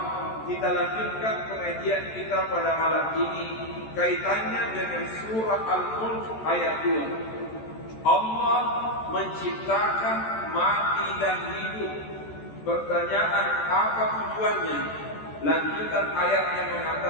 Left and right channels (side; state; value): right; late; 14 ms